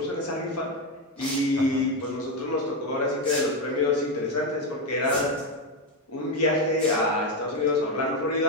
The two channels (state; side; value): normal; both; correlation 0.09